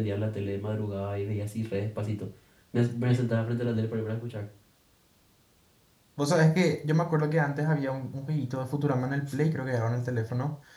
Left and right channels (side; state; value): both; identical; correlation 1.00